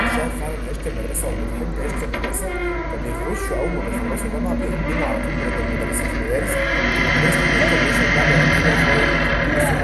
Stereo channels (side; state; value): both; identical; correlation 1.00